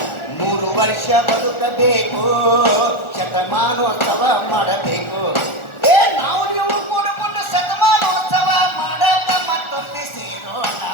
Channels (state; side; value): late; right; 1.4 ms